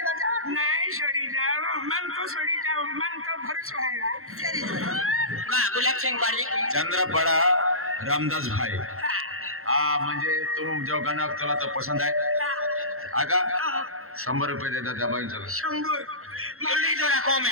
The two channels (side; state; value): left; late; 0.62 ms